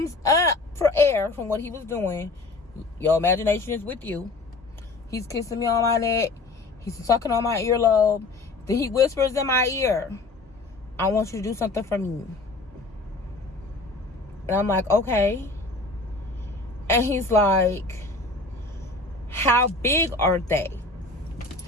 up for air from what he was doing? Your imagination is with you. He's kissing me on my neck. He's sucking on my earlobe. Then he whispers in my ear, I want you to do something for me. And I'm like, okay. And he's like, how big are they?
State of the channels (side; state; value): right; quieter; 3.3 dB